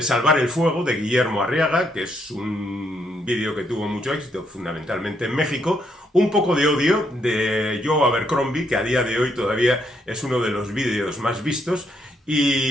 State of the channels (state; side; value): normal; both; correlation 0.74